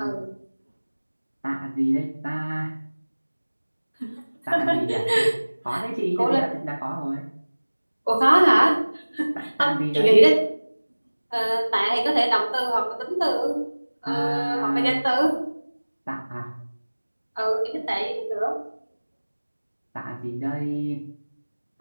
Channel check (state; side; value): inverted; both; correlation -1.00